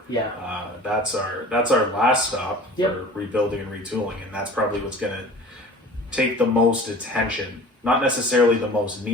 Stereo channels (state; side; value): normal; both; correlation 0.42